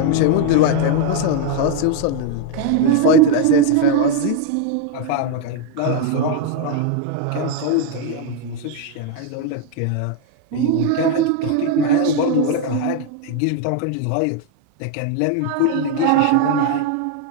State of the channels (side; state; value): both; different; correlation 0.01